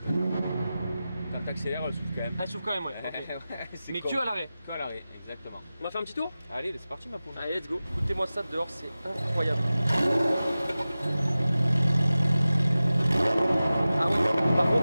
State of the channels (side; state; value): both; inverted; correlation -0.95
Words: Quand t'accélères, elle souffle quand même. Elle s'ouvre quand même, ouais. Ok. Ouais, c'est Mais con. que à l'arrêt. Que à l'arrêt, exactement. On va faire un petit tour? Allez, c'est parti ma poule. Allez, let's go. Écoutez-moi ça dehors, c'est incroyable. Ah ouais. Par